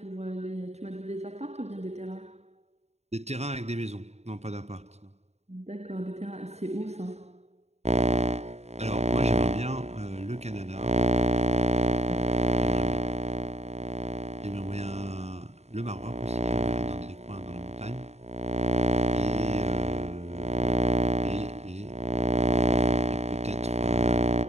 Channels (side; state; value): left; late; 0.32 ms